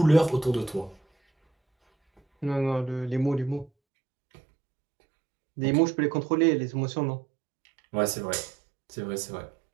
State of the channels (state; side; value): drops out; left; at 3.7 s